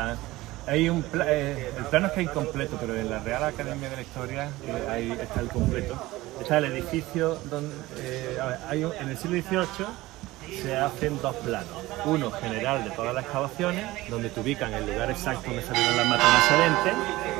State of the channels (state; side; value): quieter; left; 18.5 dB